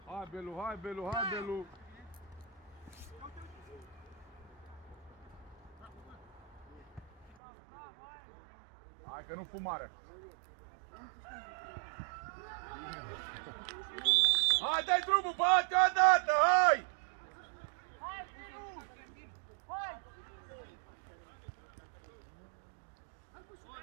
Hai, Belu! Hai că nu fumară! Hai, dai drumul, bate odată, hai! Hai, Firu! Hai!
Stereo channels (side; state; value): left; drops out; at 7.4 s